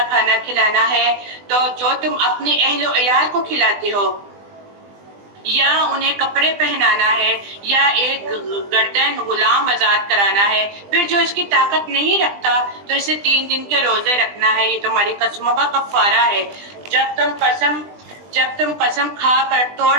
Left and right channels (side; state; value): left; late; 20 ms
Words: کھانا کھلانا ہے. تو جو تم اپنے اہل و عیال کو کھلاتے ہو یا انہیں کپڑے پہنانا ہے یا ایک گردن غلام آزاد کرانا ہے، پھر جو اس کی طاقت نہیں رکھتا تو اسے 3 دن کے روزے رکھنا ہے. یہ تمہاری قسموں کا کفارہ ہے. جب تم قسم کھا کر توڑ